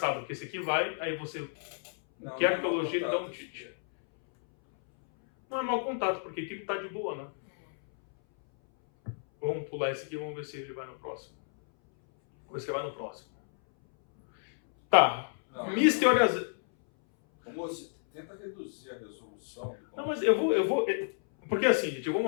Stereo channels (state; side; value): silent; right; 57 dB below the other